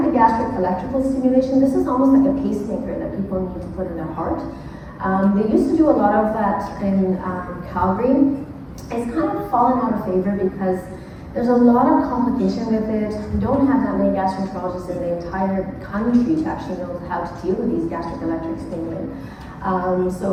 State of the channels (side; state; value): both; identical; correlation 1.00